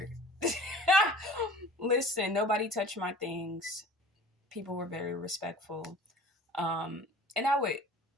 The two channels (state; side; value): normal; both; correlation 0.45